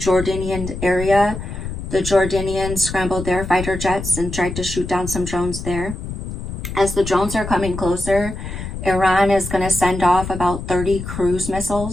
area, the Jordanians scrambled their fighter jets and tried to shoot down some drones there. As the drones are coming closer, Iran is going to send off about 30 cruise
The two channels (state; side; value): noise; left; rumble, 7 dB below the sound